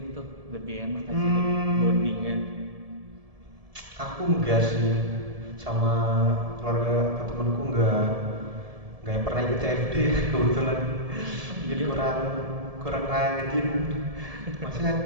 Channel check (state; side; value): late; left; 1.7 ms